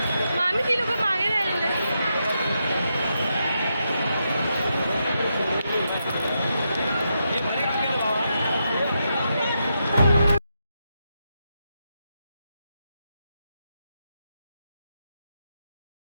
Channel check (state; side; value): inverted; both; correlation -0.84